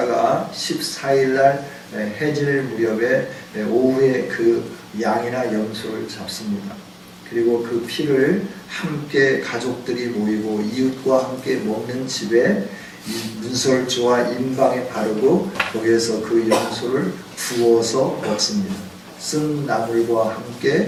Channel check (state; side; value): identical; both; correlation 1.00